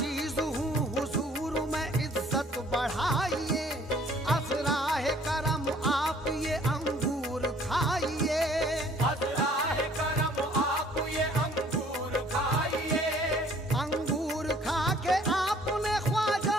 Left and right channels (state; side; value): normal; both; correlation 0.57